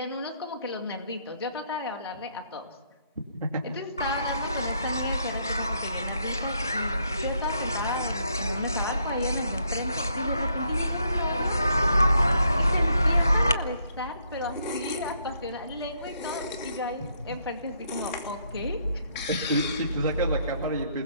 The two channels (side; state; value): both; inverted; correlation -0.72